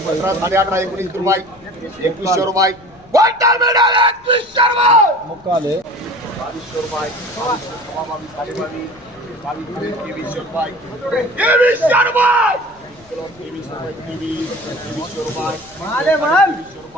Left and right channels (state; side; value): noise; left; rumble, 28 dB below the sound